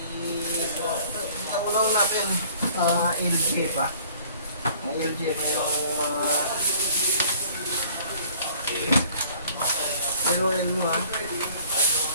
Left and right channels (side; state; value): both; inverted; correlation -0.54